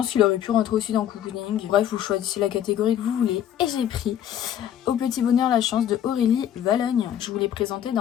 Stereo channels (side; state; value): right; quieter; 10.4 dB